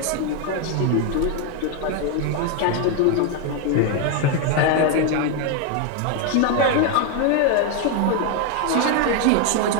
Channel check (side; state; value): both; different; correlation 0.01